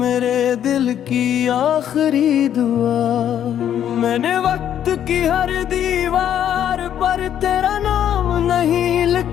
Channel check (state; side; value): quieter; right; 10.1 dB